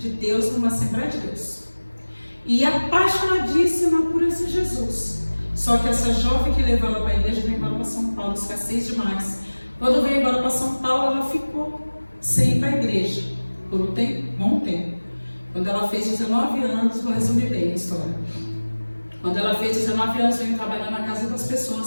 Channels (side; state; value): both; inverted; correlation -1.00